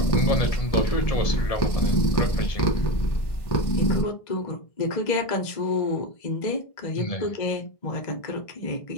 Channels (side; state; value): right; late; 1.5 ms